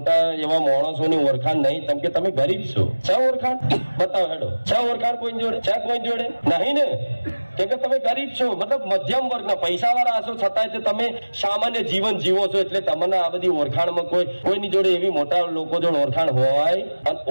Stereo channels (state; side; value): inverted; both; correlation -1.00